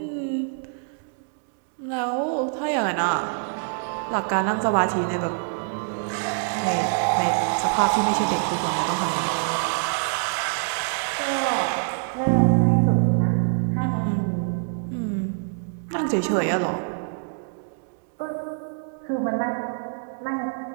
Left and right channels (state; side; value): silent; left; digital silence